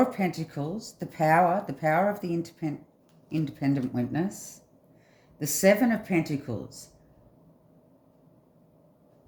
of Pentacles, the power of the independent witness. The Seven of Pentacles,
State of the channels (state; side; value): identical; both; correlation 1.00